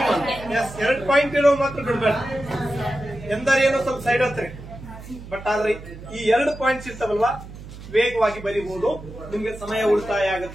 ಎಸ್, 2 ಪಾಯಿಂಟ್ ಇರೋ ಮಾತ್ರ ಬಿಡ್ಬೇಡ. ಎಂದರೇನೋ ಸ್ವಲ್ಪ ಸೈಡ್ ಹತ್ರಿ, ಬಟ್ ಆದ್ರೆ ಈ 2 ಪಾಯಿಂಟ್ಸ್ ಇರ್ತಾವಲ್ವಾ, ವೇಗವಾಗಿ ಬರೀಬಹುದು. ನಿಮ್ಗೆ ಸಮಯ ಉಳಿತಾಯ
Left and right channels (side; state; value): right; noise; hum, 14 dB below the sound